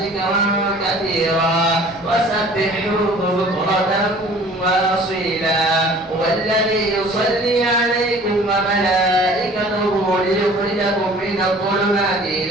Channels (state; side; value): normal; both; correlation 0.49